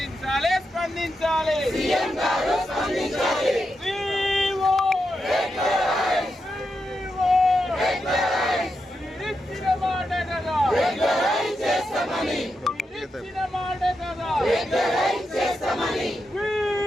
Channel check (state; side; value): normal; both; correlation 0.86